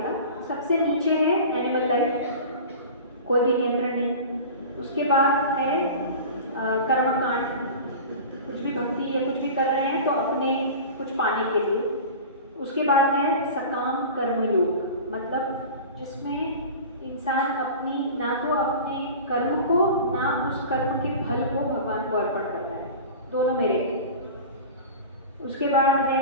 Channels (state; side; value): inverted; both; correlation -0.35